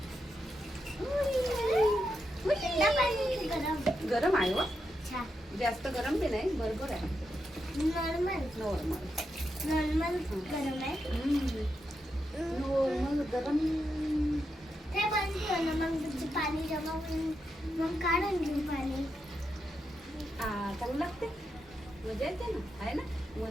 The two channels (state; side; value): normal; both; correlation 0.85